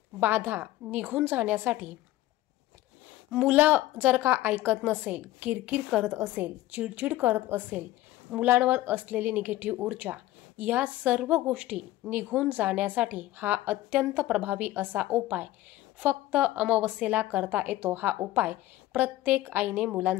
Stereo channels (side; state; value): right; quieter; 15.9 dB